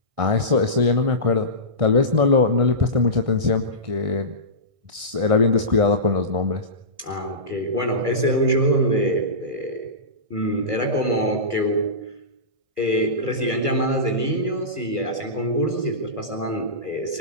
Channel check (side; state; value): left; late; 1.6 ms